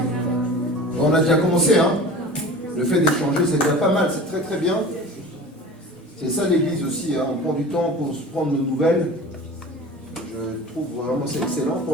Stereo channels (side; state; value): both; normal; correlation 0.38